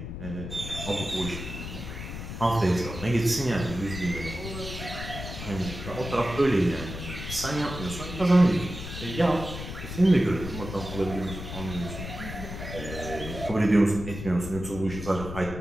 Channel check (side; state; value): left; noise; rumble, 8 dB below the sound